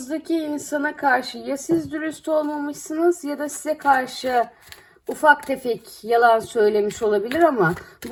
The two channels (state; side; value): identical; both; correlation 1.00